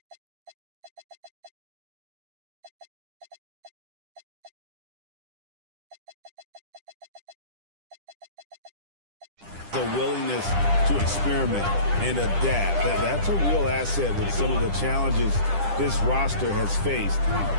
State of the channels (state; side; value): late; left; 10 ms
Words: the willingness to experiment and adapt. That's a real asset with some of the challenges this roster has faced.